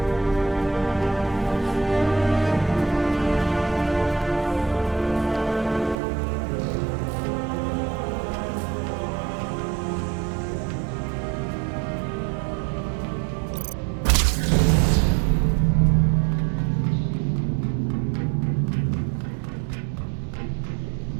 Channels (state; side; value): drops out; left; at 6.0 s